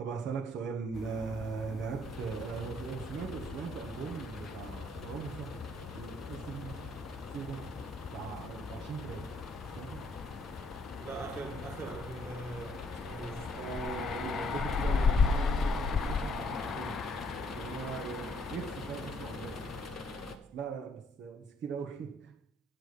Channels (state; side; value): normal; both; correlation 0.67